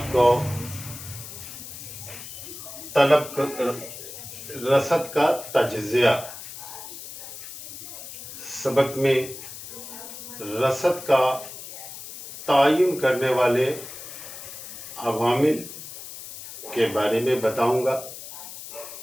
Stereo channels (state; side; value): noise; left; hiss, 12 dB below the sound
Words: کو رصد کا تجزیہ سبق میں رصد کا تعین کرنے والے عوامل کے بارے میں بتاؤں گا۔